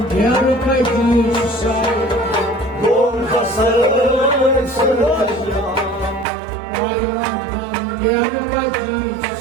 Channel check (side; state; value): left; drops out; at 6.2 s